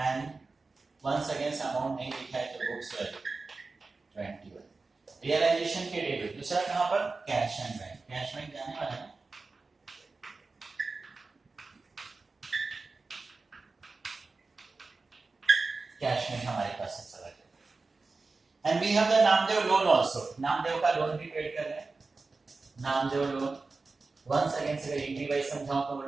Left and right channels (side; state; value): left; quieter; 3.9 dB